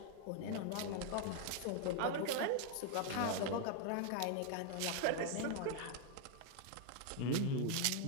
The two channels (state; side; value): different; both; correlation 0.01